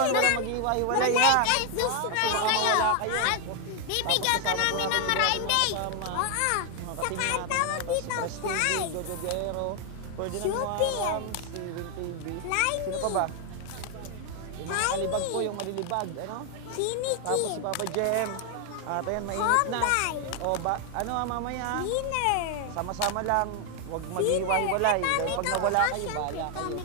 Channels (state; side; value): different; both; correlation 0.00